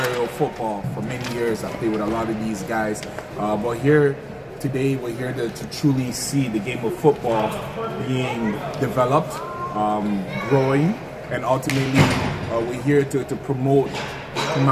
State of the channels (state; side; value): identical; both; correlation 1.00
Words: football for many years. I've played with a lot of these guys. But here today, we're here to truly see the game of football being developed, growing, and ultimately we're here to promote